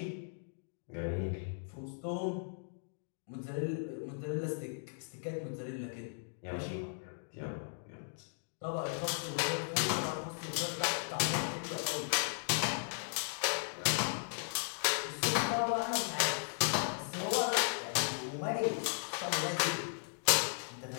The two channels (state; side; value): silent; right; digital silence